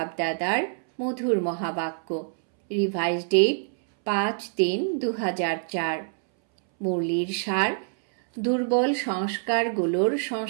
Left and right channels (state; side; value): silent; left; 61 dB below the other